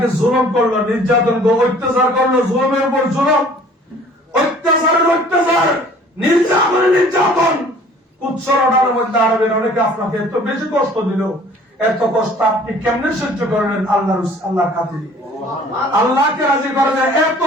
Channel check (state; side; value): normal; both; correlation 0.52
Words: জুলুম করলো, নির্যাতন করলো, অত্যাচার করলো, জুলুমের উপর জুলুম, অত্যাচারের অত্যাচার, নির্যাতনের নির্যাতন, উচ্চরণার মধ্যে আরবের অনেকে আপনাকে এত বেশি কষ্ট দিল। এত কষ্ট আপনি কেমনে সহ্য করলেন? আল্লাহর খাতিরে, আল্লাহকে রাজি করেন। এত